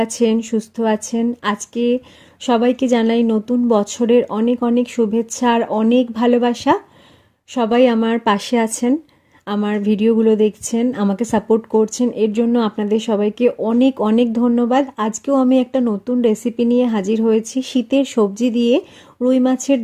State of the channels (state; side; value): identical; both; correlation 1.00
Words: আছেন, সুস্থ আছেন। আজকে সবাইকে জানাই নতুন বছরের অনেক অনেক শুভেচ্ছা আর অনেক ভালোবাসা। সবাই আমার পাশে আছেন, আমার ভিডিওগুলো দেখছেন, আমাকে সাপোর্ট করছেন, এর জন্য আপনাদের সবাইকে অনেক অনেক ধন্যবাদ। আজকেও আমি একটা নতুন রেসিপি নিয়ে হাজির হয়েছি। শীতের সবজি দিয়ে রুই মাছের